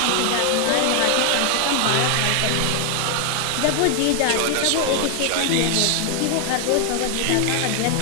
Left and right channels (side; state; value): both; different; correlation 0.00